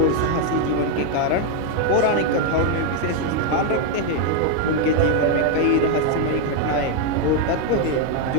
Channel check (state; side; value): different; both; correlation 0.01